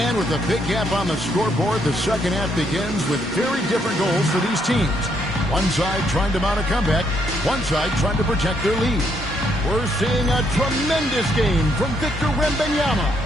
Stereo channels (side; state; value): both; normal; correlation 0.73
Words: with a big gap on the scoreboard, the second half begins with very different goals for these teams. One side trying to mount a comeback, one side trying to protect their lead. We're seeing a tremendous game from Victor Wembanyama.